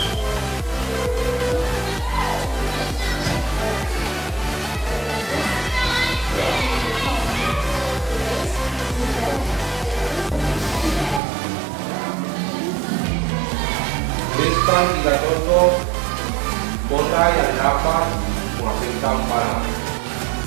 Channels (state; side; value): drops out; left; at 11.2 s